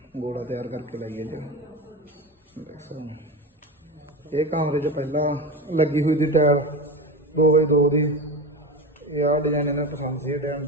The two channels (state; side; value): normal; both; correlation 0.24